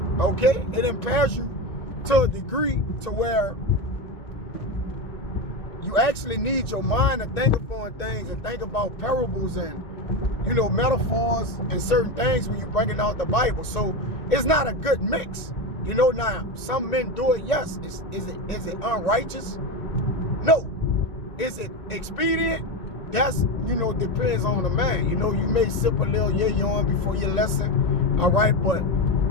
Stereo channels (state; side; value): late; right; 2.2 ms